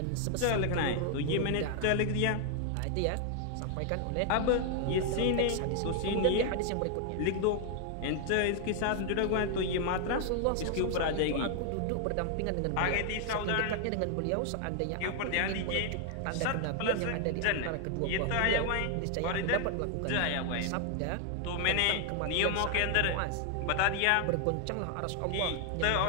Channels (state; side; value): different; both; correlation 0.00